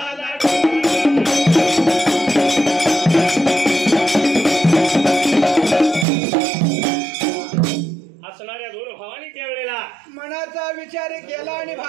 असणाऱ्या दोन भावानी त्यावेळेला मनाचा विचार केला आणि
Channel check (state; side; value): drops out; left; at 6.1 s